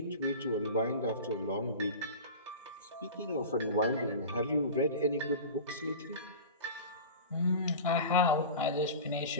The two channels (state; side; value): inverted; both; correlation -0.32